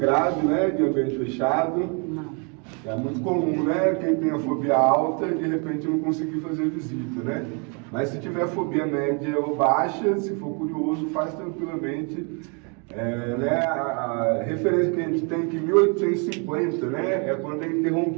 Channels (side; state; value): left; quieter; 35.2 dB